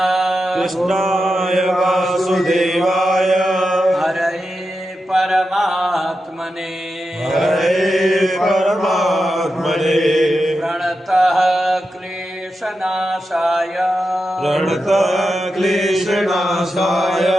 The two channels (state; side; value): normal; both; correlation 0.89